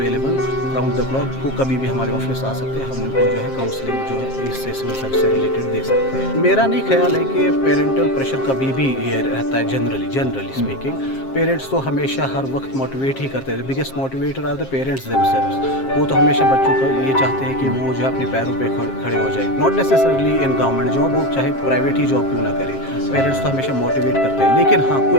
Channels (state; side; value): late; right; 7.5 ms